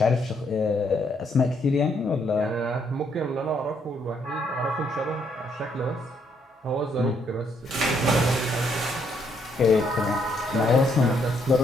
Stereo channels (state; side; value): normal; both; correlation 0.72